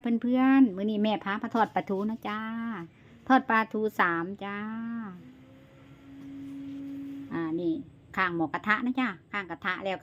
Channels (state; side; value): identical; both; correlation 1.00